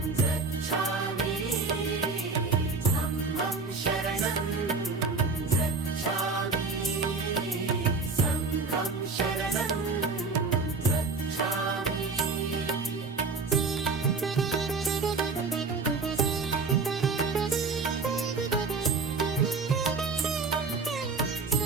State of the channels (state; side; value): quieter; left; 4.2 dB